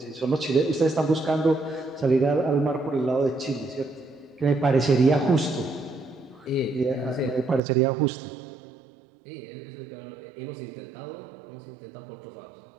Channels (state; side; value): drops out; left; at 7.6 s